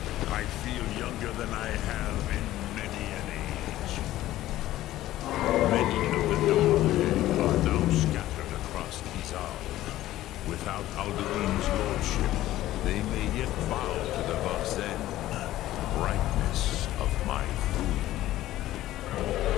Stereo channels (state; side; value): quieter; right; 14.8 dB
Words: I feel younger than I have in many an age. Many of the Nomae are now scattered across Izal. Without Alduin's lordship, they may yet bow to the Vaxen, brightness of my food.